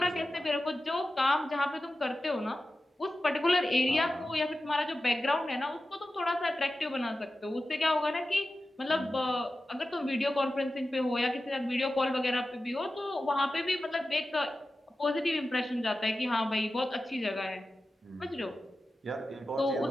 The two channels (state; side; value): normal; both; correlation 0.94